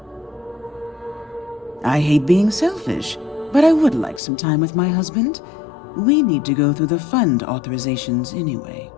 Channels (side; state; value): right; drops out; at 4.2 s